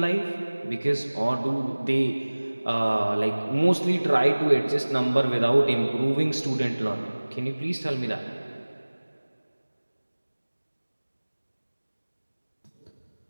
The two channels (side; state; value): both; inverted; correlation -1.00